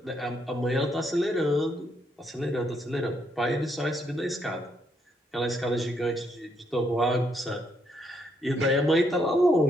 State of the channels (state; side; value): normal; both; correlation 0.74